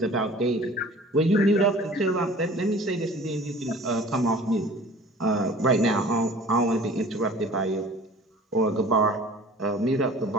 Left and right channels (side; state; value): both; normal; correlation 0.46